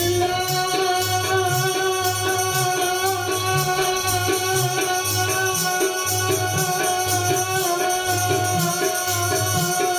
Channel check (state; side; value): identical; both; correlation 1.00